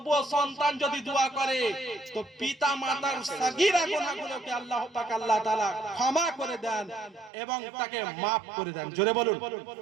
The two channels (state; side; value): drops out; left; at 7.3 s